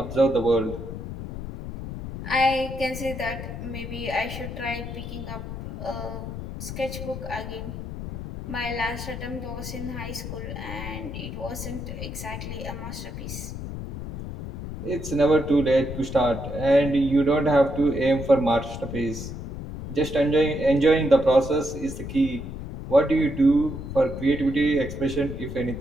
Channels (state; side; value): noise; left; rumble, 8 dB below the sound